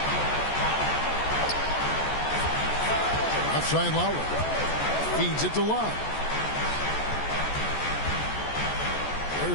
Outside Lowry. Feeds it to Love.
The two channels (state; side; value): late; right; 14 ms